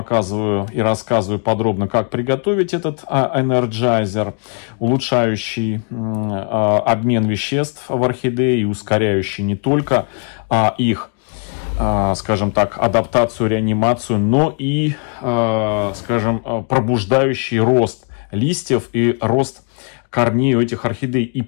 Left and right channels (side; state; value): right; quieter; 39.1 dB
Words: и рассказываю подробно, как приготовить этот Energizer, улучшающий обмен веществ в орхидеи и ускоряющий не только их, скажем так, адаптацию, реанимацию, но и, скажем, пробуждающий рост листьев и рост корней у этих орхидей. И